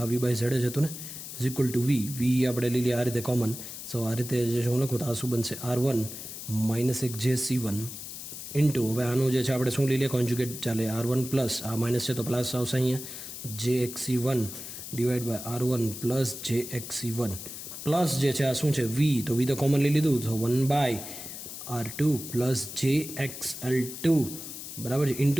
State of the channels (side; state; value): left; noise; hiss, 10 dB below the sound